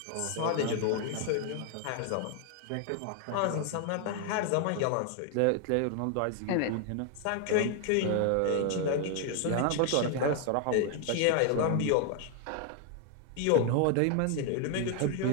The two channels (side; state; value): both; different; correlation 0.00